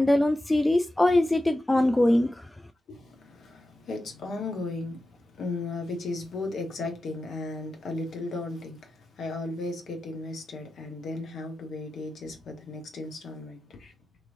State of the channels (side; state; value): both; normal; correlation 0.92